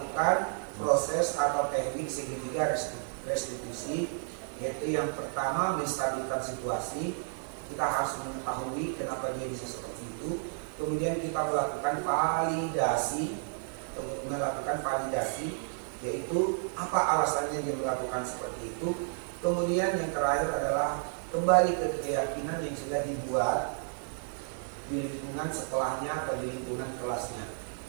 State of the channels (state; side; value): silent; left; 57 dB below the other